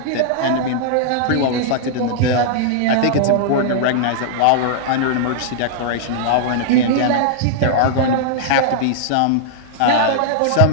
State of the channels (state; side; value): different; both; correlation -0.01